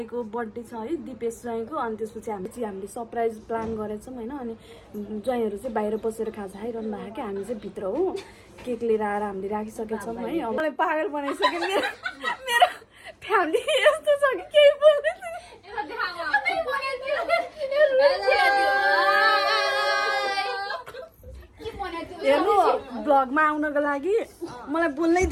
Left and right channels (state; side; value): identical; both; correlation 1.00